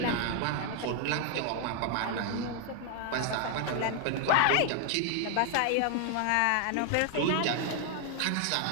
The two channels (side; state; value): both; different; correlation 0.00